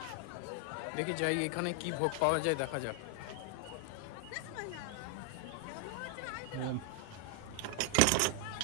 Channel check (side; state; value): both; different; correlation 0.00